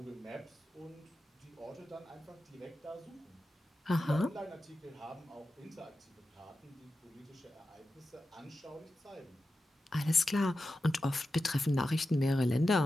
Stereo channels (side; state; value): both; normal; correlation 0.91